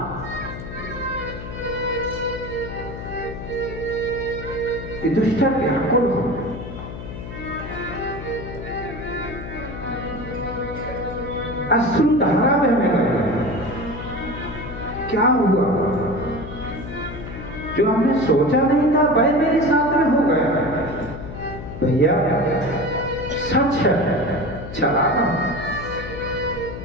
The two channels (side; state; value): left; noise; hum, 10 dB below the sound